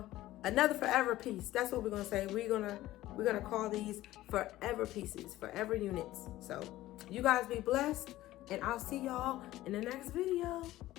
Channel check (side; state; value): right; quieter; 15.8 dB